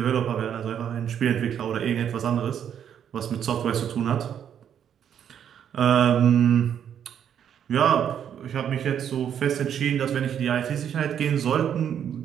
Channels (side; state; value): left; quieter; 8.9 dB